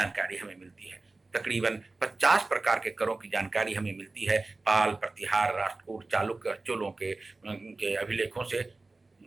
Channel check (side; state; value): left; quieter; 3.4 dB